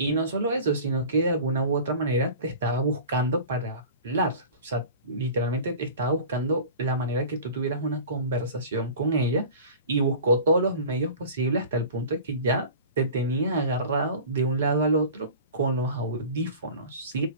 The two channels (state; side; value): inverted; both; correlation -0.38